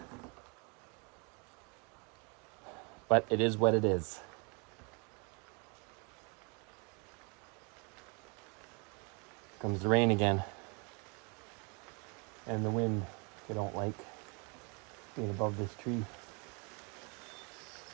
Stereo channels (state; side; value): quieter; left; 33.1 dB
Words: But it is what it is. Comes the rain again. And the wind, I don't like being above this tree.